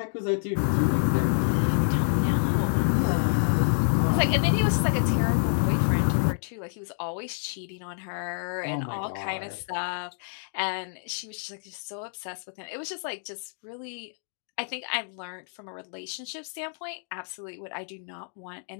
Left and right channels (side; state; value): right; silent; digital silence